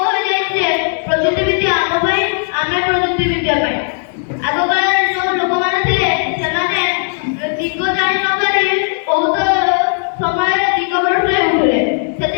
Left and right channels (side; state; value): right; silent; digital silence